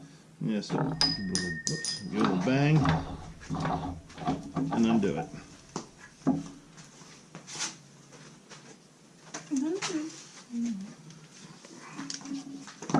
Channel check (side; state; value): both; identical; correlation 1.00